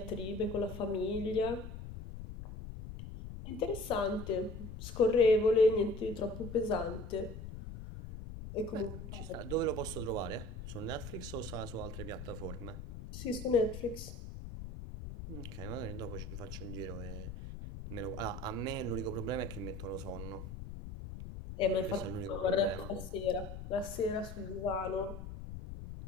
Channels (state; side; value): noise; left; rumble, 9 dB below the sound